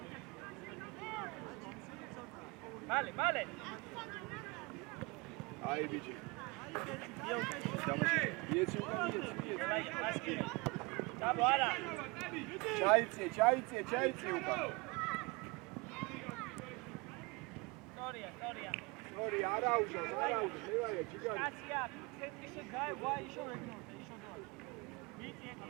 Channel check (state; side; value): quieter; left; 26.8 dB